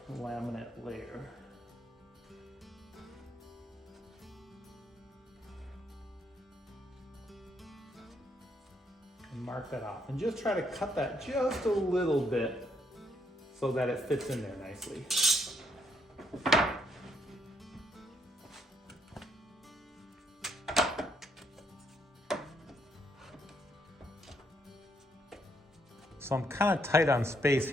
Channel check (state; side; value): normal; both; correlation 0.73